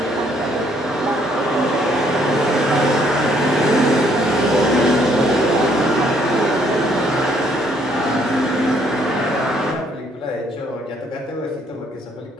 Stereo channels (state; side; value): normal; both; correlation 0.67